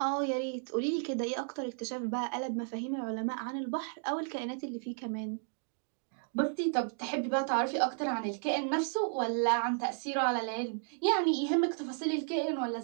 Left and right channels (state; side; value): silent; left; 55 dB below the other